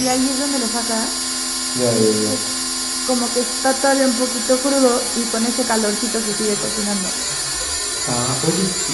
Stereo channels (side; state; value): both; identical; correlation 1.00